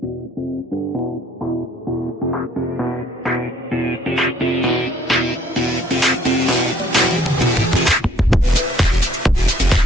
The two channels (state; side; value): normal; both; correlation 0.61